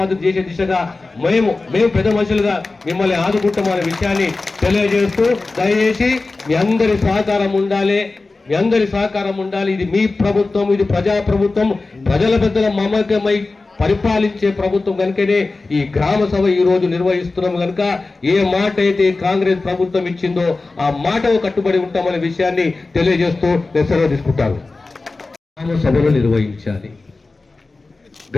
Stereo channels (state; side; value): quieter; right; 3.5 dB